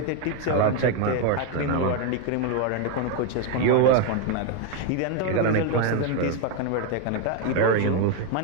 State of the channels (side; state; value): both; different; correlation 0.01